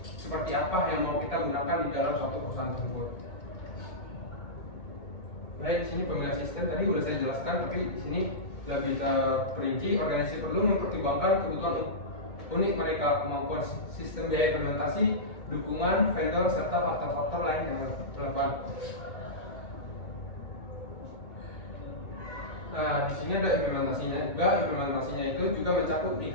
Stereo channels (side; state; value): right; late; 2.2 ms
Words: apa yang mau kita gunakan di dalam suatu perusahaan tersebut. Baik, di sini pemilihan sistem tadi sudah saya jelaskan, tapi di sini lebih terperinci. Organisasi perlu mempertimbangkan kebutuhan unik mereka, kemampuan sistem biaya implementasi, dukungan vendor serta faktor-faktor lain yang relevan. Nah, di sini ada implementasinya juga. Implementasinya itu juga mencakup